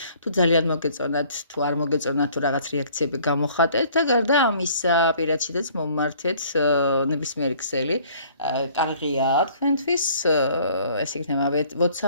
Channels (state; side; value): inverted; both; correlation -0.56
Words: თუ ძალიან მოგეწონათ, თუ არ მოგეწონათ, თუ რაღაც რეაქციები გამოხატეთ და გარდა ამისა, პირადშიც მომმართეთ ნებისმიერი ქსელი, კარგია თქვენთვის, ეს იქნება